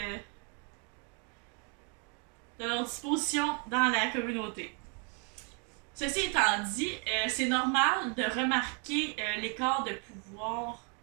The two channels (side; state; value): left; quieter; 37.4 dB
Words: de leur disposition dans la communauté. Ceci étant dit, c'est normal de remarquer l'écart de pouvoir